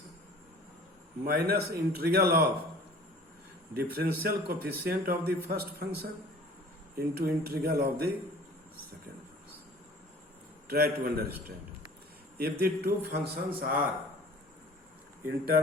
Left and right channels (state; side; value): normal; both; correlation 0.47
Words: minus integral of differential coefficient of the first function into integral of the second function. Try to understand. If the two functions are in